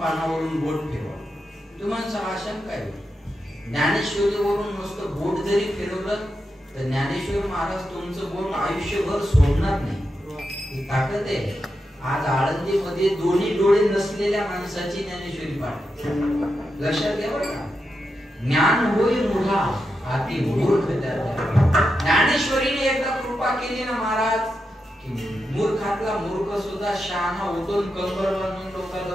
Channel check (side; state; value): both; normal; correlation 0.87